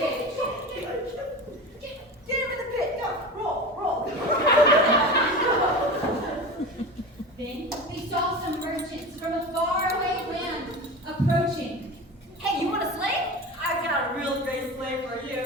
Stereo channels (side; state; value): both; normal; correlation 0.29